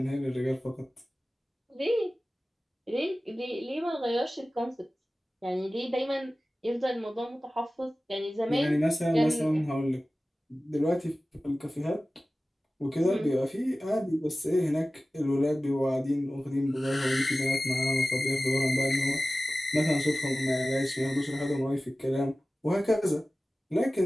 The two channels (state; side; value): normal; both; correlation 0.96